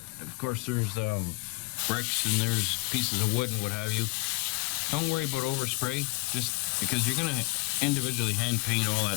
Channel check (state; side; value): quieter; right; 27.8 dB